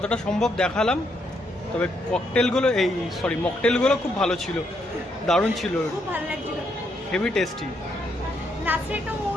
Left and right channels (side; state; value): both; normal; correlation 0.76